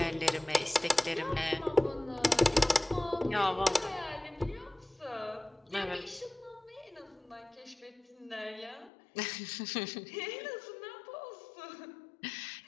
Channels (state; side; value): drops out; right; at 8.9 s